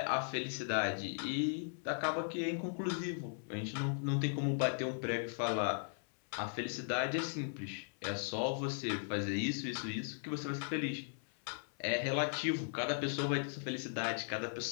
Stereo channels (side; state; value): right; silent; 53 dB below the other